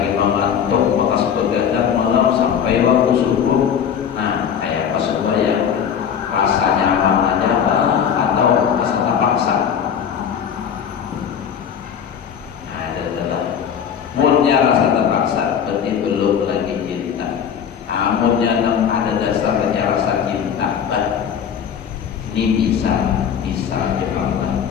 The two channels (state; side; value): quieter; right; 8.0 dB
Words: mengantuk, maka begadang malam sampai waktu subuh. Nah, kayak apa supaya rasa nyaman aja atau rasa terpaksa? Nah, adalah mulnya rasa terpaksa berarti belum lagi cinta. Namunnya ada dasarnya rasa cinta, ini bisa jemaah.